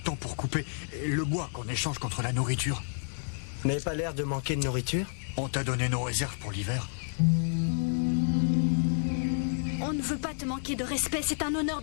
pour couper le bois qu'on échange contre la nourriture. Vous n'avez pas l'air de manquer de nourriture? On t'a donné nos réserves pour l'hiver. On ne veut pas te manquer de respect. C'est un honneur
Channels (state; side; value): silent; right; digital silence